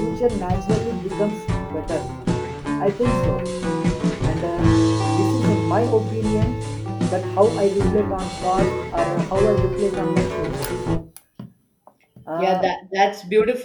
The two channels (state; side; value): identical; both; correlation 1.00